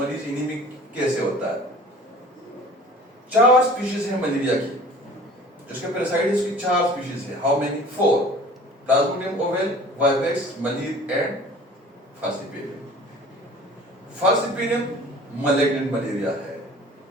एनीमिक कैसे होता है? 4 स्पीशीज है मलेरिया की, जिसके पैरासाइट्स की 4 स्पीशीज है। How many? 4, plasmodium ovale, vivax, malaria and falciparum. Falciparum malignant malaria है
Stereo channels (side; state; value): both; normal; correlation 0.45